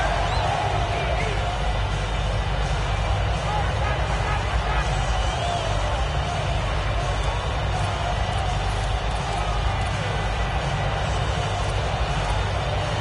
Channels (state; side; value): identical; both; correlation 1.00